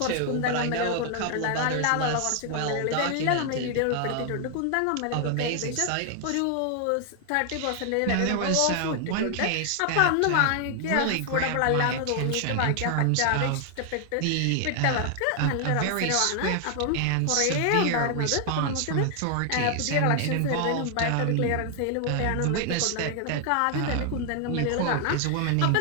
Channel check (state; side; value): different; both; correlation 0.00